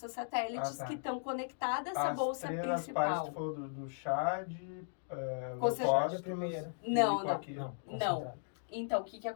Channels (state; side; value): silent; right; digital silence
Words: satélites, que estão conectadas a essa bolsa principal. As partes falou do chá de... concentrado primeiro. Não. Então, o que